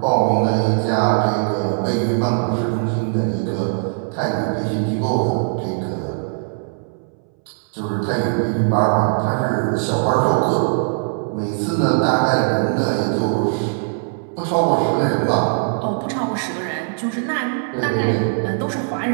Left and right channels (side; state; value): left; silent; 66 dB below the other